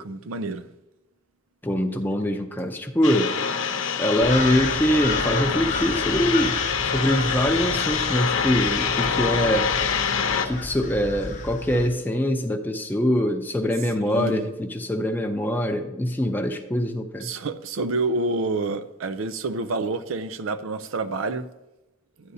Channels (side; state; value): both; normal; correlation 0.50